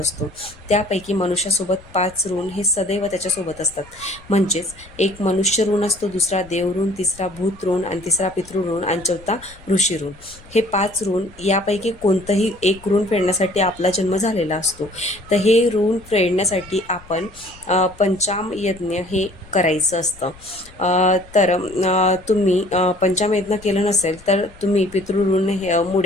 त्यापैकी मनुष्यासोबत 5 ऋण हे सदैव त्याच्यासोबत असतात. म्हणजेच एक मनुष्य ऋण असतो, दुसरा देव ऋण, तिसरा भूत ऋण आणि तिसरा पितृ ऋण आणि चौथा ऋषी ऋण. हे 5 ऋण यापैकी कोणतंही एक ऋण फेडण्यासाठी आपला जन्म झालेला असतो. तर हे ऋण फेडण्यासाठी आपण पंचाम यज्ञ हे करायचं असतं. तर तुम्ही पंचाम यज्ञ केलं नसेल तर तुम्ही पितृऋण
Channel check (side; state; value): left; noise; rumble, 23 dB below the sound